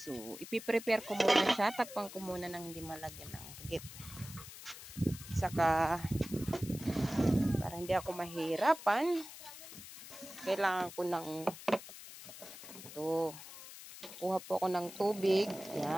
ipiprepare ko muna siya. Takpan ko muna ng hindi malagyan ng rugit. Saka, para hindi ako mahirapan, kailangan ko ng ito. Kuha po ako ng tubig.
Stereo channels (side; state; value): left; noise; hiss, 14 dB below the sound